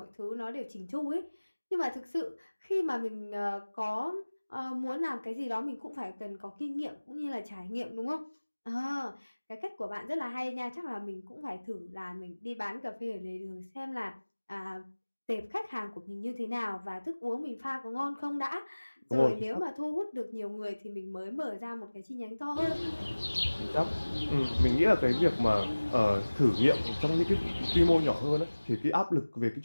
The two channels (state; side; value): inverted; both; correlation -1.00